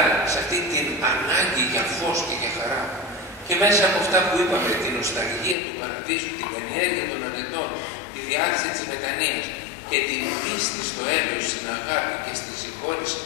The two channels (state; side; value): drops out; right; at 5.6 s